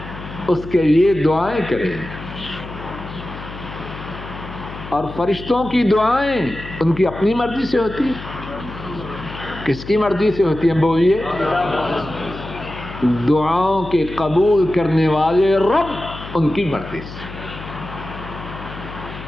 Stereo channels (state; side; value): noise; left; hum, 12 dB below the sound